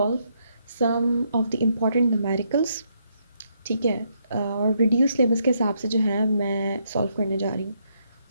some of the important numericals. ठीक है. और रिड्यूस सिलेबस के हिसाब से जो है मैं सॉल्व करने जा रही हूँ.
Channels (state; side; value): inverted; both; correlation -0.76